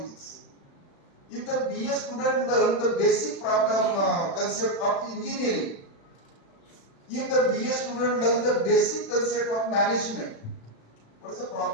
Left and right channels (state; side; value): late; right; 36 ms